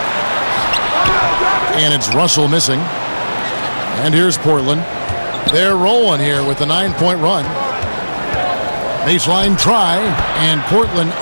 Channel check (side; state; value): both; inverted; correlation -1.00